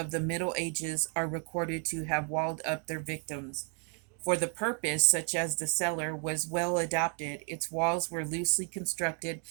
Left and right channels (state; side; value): quieter; left; 39.5 dB